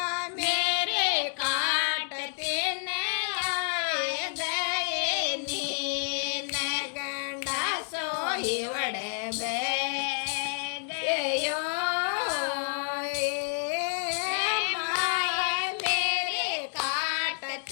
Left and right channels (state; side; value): silent; right; 58 dB below the other